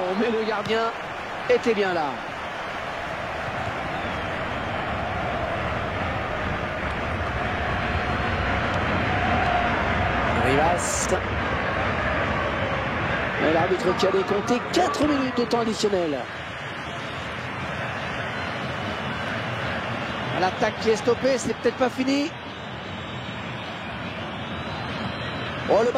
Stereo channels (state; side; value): identical; both; correlation 1.00